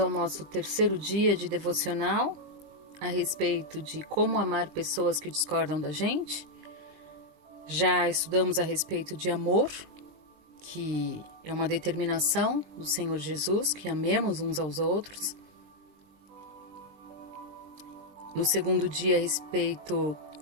nosso terceiro dia de devocional a respeito de como amar pessoas que discordam da gente. Já estudamos a respeito de amor, que é uma determinação do Senhor Jesus, que amemos uns aos outros. No segundo dia, a respeito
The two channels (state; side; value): late; left; 20 ms